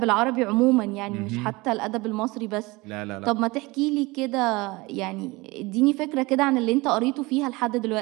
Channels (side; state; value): left; quieter; 23.1 dB